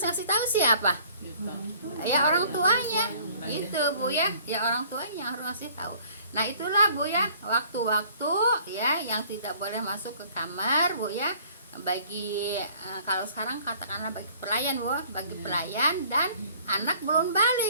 ngasih tahu siapa? Ya orang tuanya gitu Bu ya. Ya orang tuanya harus ngasih tahu. Nah itulah Bu ya, waktu-waktu ya yang tidak boleh masuk ke kamar Bu ya, bagi kalau sekarang katakanlah bagi pelayan Bu, bagi pelayan dan anak belum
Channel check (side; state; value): both; inverted; correlation -0.55